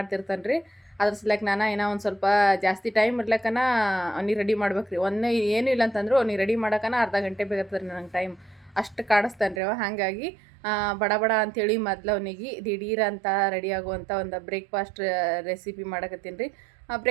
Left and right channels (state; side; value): drops out; left; at 9.6 s